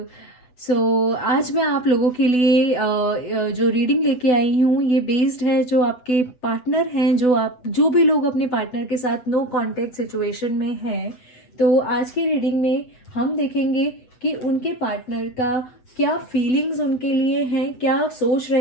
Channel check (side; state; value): right; late; 8.1 ms